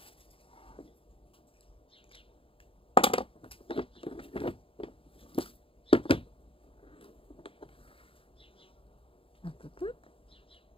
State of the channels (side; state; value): right; late; 0.26 ms